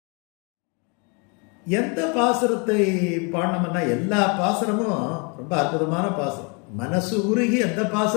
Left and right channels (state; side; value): quieter; right; 33.7 dB